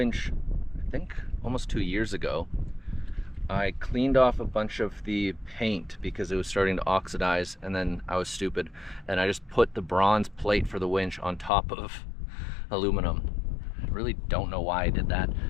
I think almost 2 years ago, I cleaned off a bunch of the paint because it was starting to oxidize, and then I was stupid and I just put the bronze plate for the winch on top of aluminum. I really don't know why I did that,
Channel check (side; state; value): right; drops out; at 11.5 s